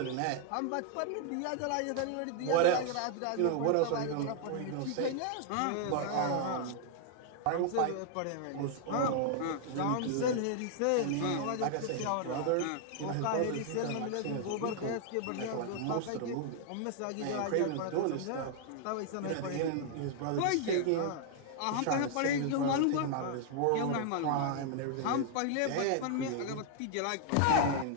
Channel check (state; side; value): different; both; correlation 0.00